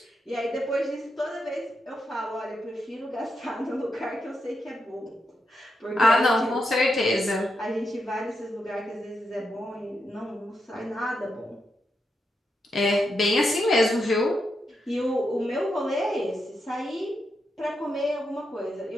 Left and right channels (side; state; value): both; normal; correlation 0.84